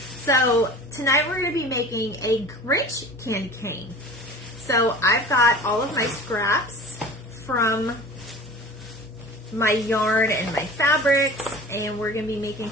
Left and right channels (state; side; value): normal; both; correlation 0.39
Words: So tonight we're going to be making a Grich candy cane. So I've got all of my scraps from my yarn and my fabrics, and we're going to be making